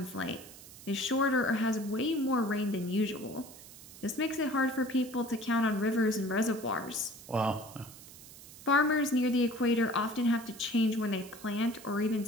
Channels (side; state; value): right; noise; hiss, 17 dB below the sound